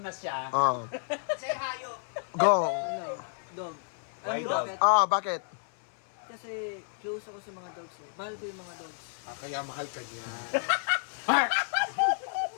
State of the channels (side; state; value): right; silent; 57 dB below the other